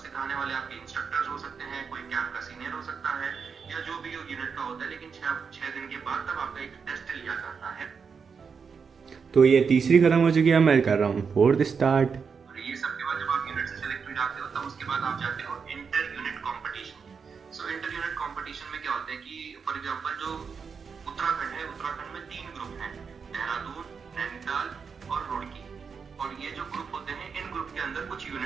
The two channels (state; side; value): quieter; left; 5.8 dB